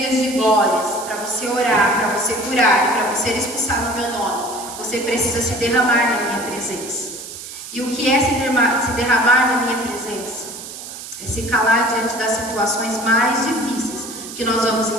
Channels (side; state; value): right; noise; hiss, 12 dB below the sound